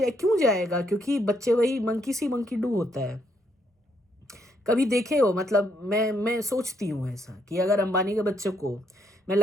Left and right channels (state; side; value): normal; both; correlation 0.73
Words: क्यों जाएगा? क्योंकि बच्चे वही मंकी सी मंकी डू होता है। कभी देखे हो? मतलब मैं सोचती हूँ ऐसा कि अगर अंबानी के बच्चे को मैं